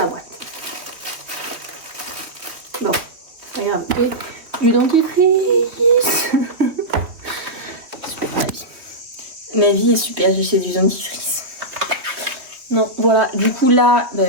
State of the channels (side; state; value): left; late; 3.1 ms